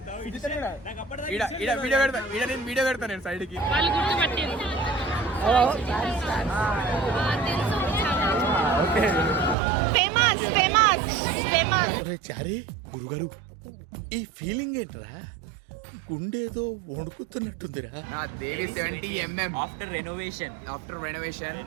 నేను వీడియో పెడతాను నేను సైడ్ కి. చారి గురుగారు, ఈ ఫీలింగ్ ఏంట్రా? గుండేదో వణుకుతున్నట్టుందిరా. దేవి 70mm ఆఫ్టర్ రెనోవేషన్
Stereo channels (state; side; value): drops out; left; at 9.6 s